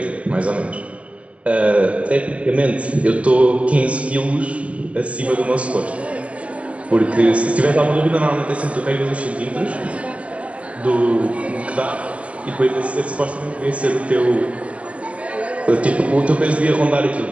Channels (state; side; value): late; left; 0.064 ms